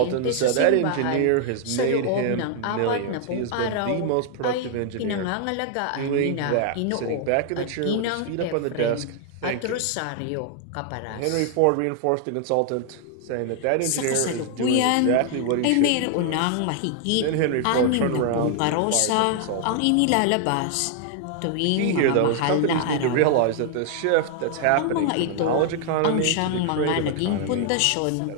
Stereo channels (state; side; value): different; both; correlation 0.00